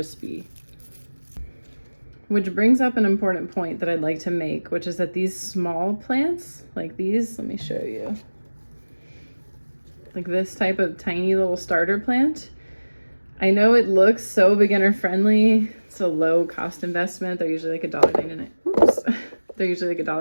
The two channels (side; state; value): both; inverted; correlation -1.00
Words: Which brings up an important point that I'd like to make, which is that these small plants, like these, let me show you. Like this type of tiny little starter plant, I know it looks so beginner friendly. It's a low cost investment. They're usually like $1.99. Oops. They're usually like